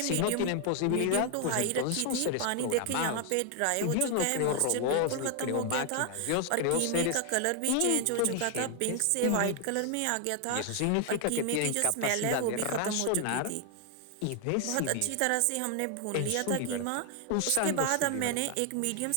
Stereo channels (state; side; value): different; both; correlation 0.00